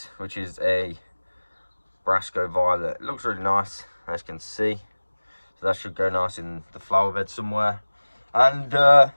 which is a Brasco violet. It looks really nice, as you can see. So that should go nice in the flower bed somewhere. And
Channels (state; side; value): inverted; both; correlation -1.00